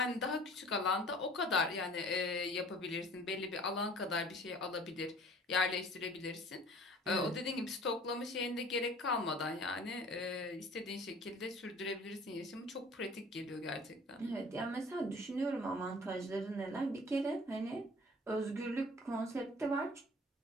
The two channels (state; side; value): normal; both; correlation 0.48